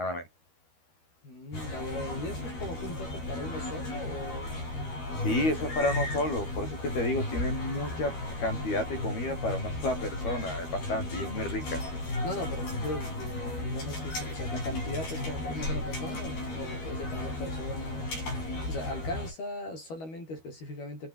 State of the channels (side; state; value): right; late; 12 ms